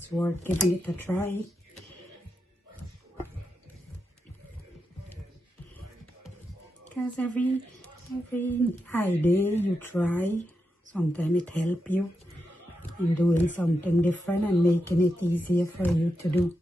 worth giving it a try. Because every idea you try, sometimes it helps you in doing something different and making it easier for you to do.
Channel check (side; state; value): both; normal; correlation 0.86